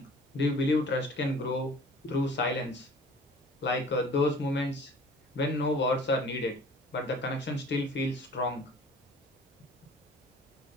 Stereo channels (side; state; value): both; normal; correlation 0.48